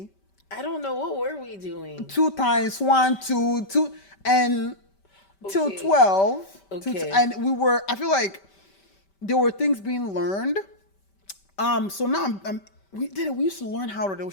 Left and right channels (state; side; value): late; right; 5.1 ms